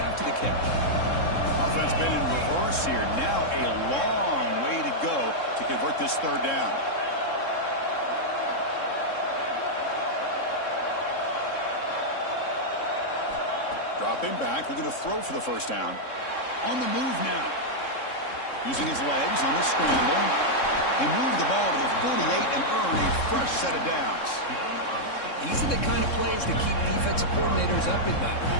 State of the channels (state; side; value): late; right; 3.7 ms